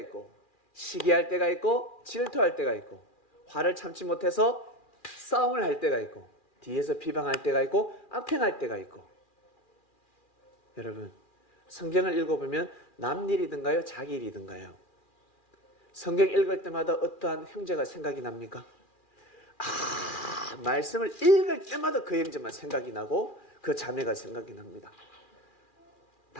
시기할 때가 있고, 질투할 때가 있고, 화를 참지 못해서 싸움을 할 때가 있고, 뒤에서 비방할 때가 있고, 악행할 때가 있고. 여러분, 성경을 읽어보면 남 일이든가요? 자기 일이든가요? 성경 읽을 때마다 어떠한 형제가 생각이 납니까? 말씀을 읽을 때마다 그 형제만 생각이 나고 그 자매가 생각이 납니다.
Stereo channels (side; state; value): right; late; 2.4 ms